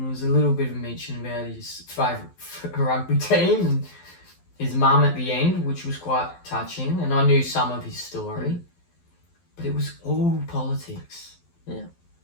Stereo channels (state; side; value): late; right; 12 ms